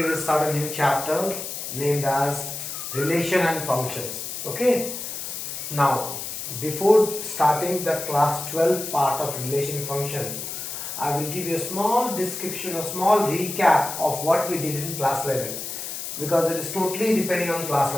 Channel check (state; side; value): noise; left; hiss, 6 dB below the sound